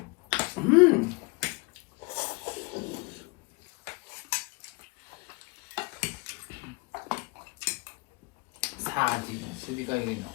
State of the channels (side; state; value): right; quieter; 27.8 dB